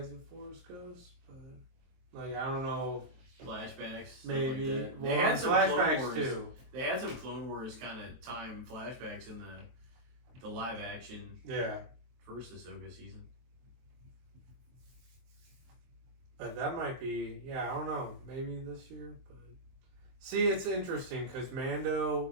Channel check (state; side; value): late; left; 23 ms